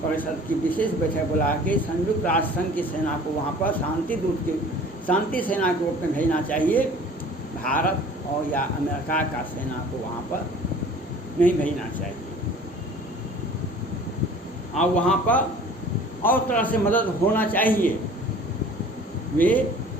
परिषद की विशेष बैठक बुला के संयुक्त राष्ट्र संघ की सेना को वहाँ पर शांति सेना के रूप में भेजना चाहिए। भारत और या अमेरिका का सेना को वहाँ पर नहीं भेजना चाहिए, और वहाँ पर और तरह से मदद होना चाहिए। वे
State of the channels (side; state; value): both; normal; correlation 0.47